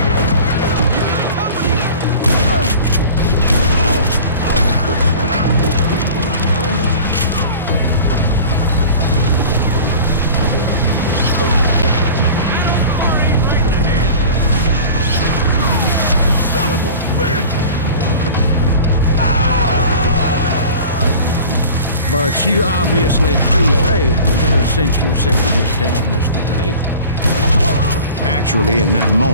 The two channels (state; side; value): inverted; both; correlation -0.40